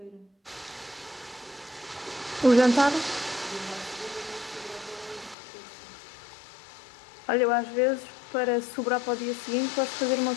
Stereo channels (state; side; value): drops out; right; at 5.4 s